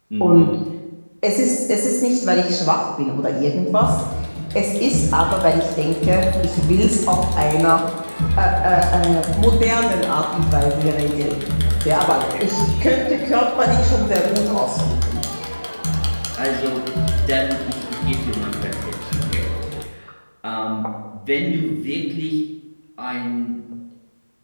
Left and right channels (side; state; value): both; inverted; correlation -1.00